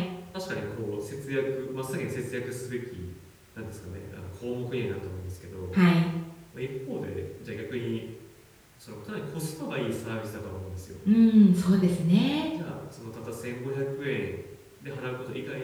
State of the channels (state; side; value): identical; both; correlation 1.00